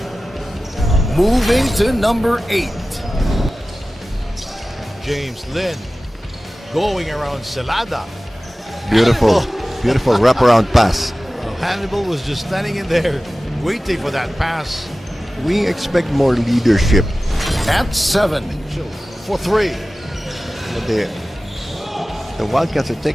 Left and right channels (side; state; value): both; normal; correlation 0.96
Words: Moving to number 8. James Lin going around Celada. Beautiful, beautiful wraparound pass. Hannibal was just standing in there waiting for that pass. We expect more leadership. At 7 for 3. But the Wildcats are